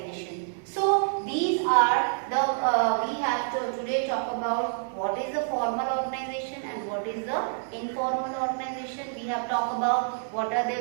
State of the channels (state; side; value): silent; left; 60 dB below the other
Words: So these are the we have to today talk about what is the formal organization and what is the informal organization. We have talked about what are